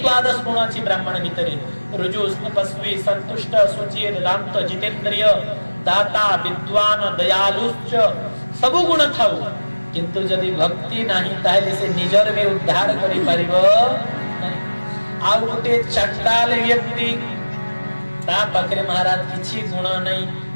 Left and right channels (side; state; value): both; inverted; correlation -1.00